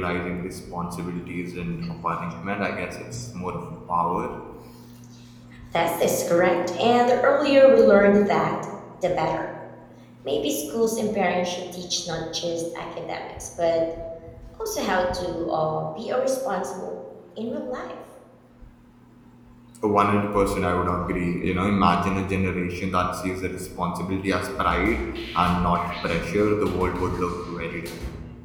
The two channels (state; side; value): identical; both; correlation 1.00